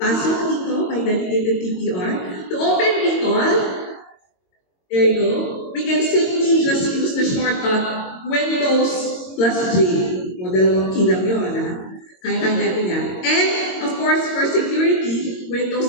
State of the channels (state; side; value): late; right; 22 ms